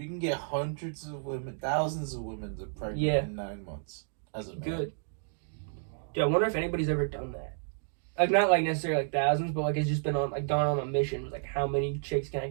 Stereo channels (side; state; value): left; silent; digital silence